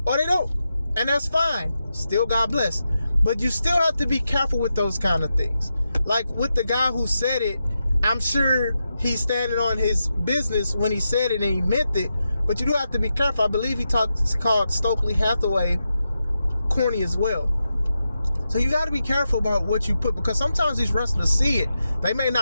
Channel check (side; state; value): both; inverted; correlation -0.88